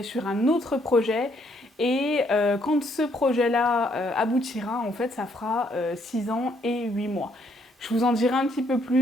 sur un autre projet et quand ce projet-là aboutira, en fait ça fera 6 ans et 8 mois. Je vous en dirai un petit peu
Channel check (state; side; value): normal; both; correlation 0.70